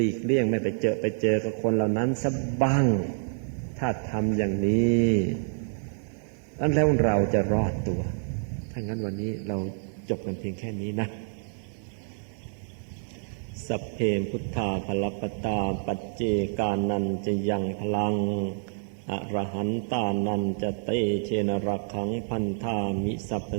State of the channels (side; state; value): left; silent; digital silence